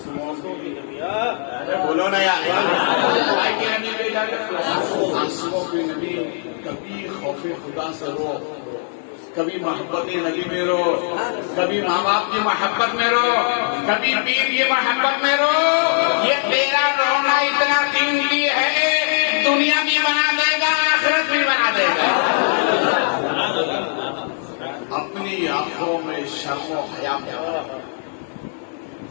کی نبی، بولو نا یار، کائی کی نبی پیدا کیا؟ آنسوؤں کی نبی۔ کبھی خوف خدا سے رو، کبھی محبت نبی میں رو، کبھی ماں باپ کی محبت میں رو، کبھی پیر کی محبت میں رو۔ یہ تیرا رونا اتنا قیمتی ہے، دنیا بھی بنا دے گا، آخرت بھی بنا دے گا۔ آنکھوں میں شرم و حیا پیدا ہو۔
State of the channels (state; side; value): silent; right; digital silence